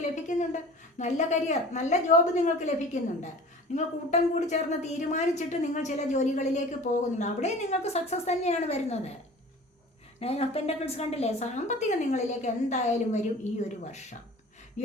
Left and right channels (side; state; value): both; normal; correlation 0.42